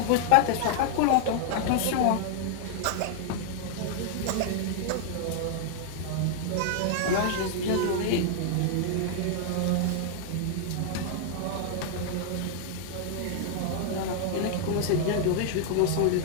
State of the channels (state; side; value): different; both; correlation 0.00